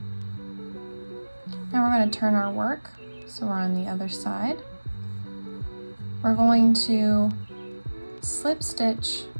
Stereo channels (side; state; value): both; inverted; correlation -1.00